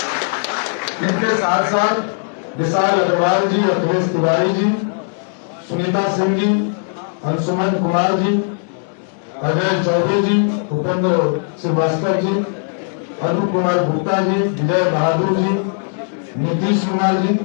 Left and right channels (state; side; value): silent; right; 67 dB below the other